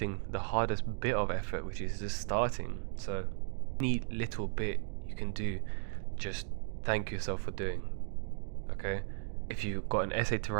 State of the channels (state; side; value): silent; left; 54 dB below the other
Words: the hardest bit of effort, which is just starting. So any little bit you can do, just thank yourself for doing. Okay, if you've got an essay to